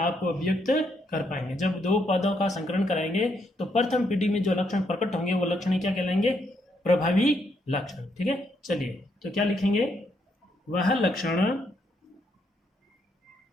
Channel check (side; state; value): both; normal; correlation 0.75